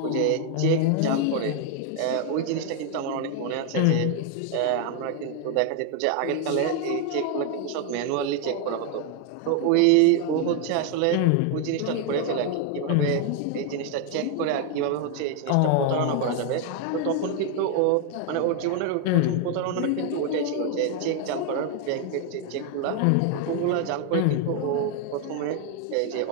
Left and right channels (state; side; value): different; both; correlation 0.01